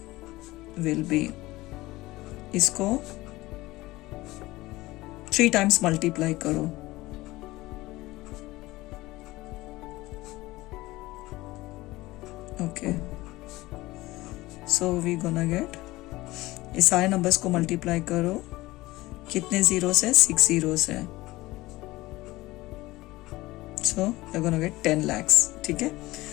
will be, इसको 3 times multiply करो. Okay. So we gonna get, इस सारे नंबर्स को मल्टीप्लाई करो. कितने जीरोस है? 6 जीरोस है. So we're gonna get 10 lakhs. ठीक है.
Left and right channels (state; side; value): quieter; right; 19.2 dB